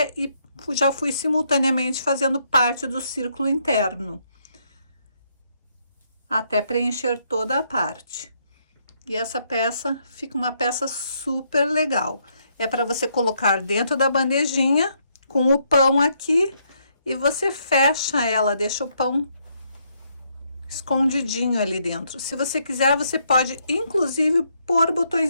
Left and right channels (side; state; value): both; inverted; correlation -0.74